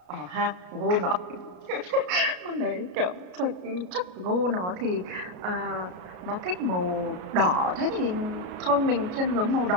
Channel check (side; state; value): left; late; 33 ms